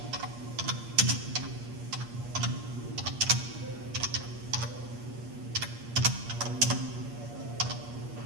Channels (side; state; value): left; late; 8.5 ms